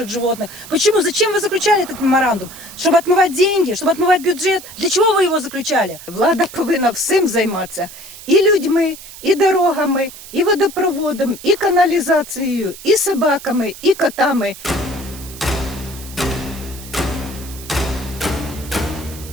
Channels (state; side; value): noise; right; hiss, 16 dB below the sound